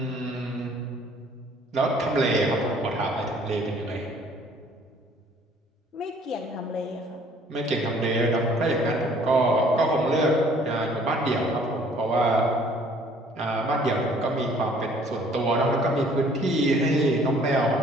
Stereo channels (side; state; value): both; normal; correlation 0.57